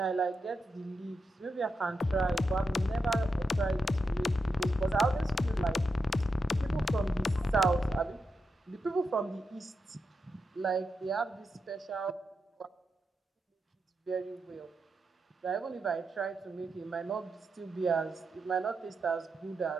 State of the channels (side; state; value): both; normal; correlation 0.86